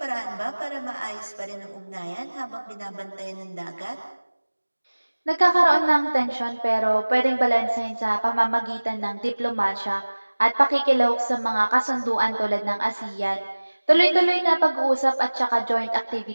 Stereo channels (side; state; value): both; inverted; correlation -1.00